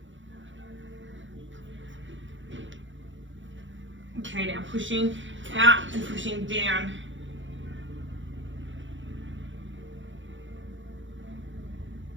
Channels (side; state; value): left; late; 0.55 ms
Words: Okay, now pushing out and pushing down.